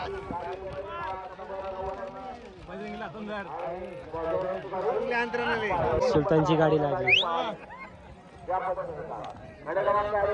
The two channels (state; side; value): identical; both; correlation 1.00